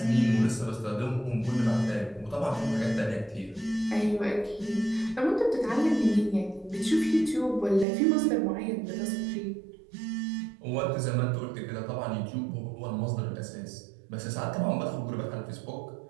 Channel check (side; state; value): left; drops out; at 7.9 s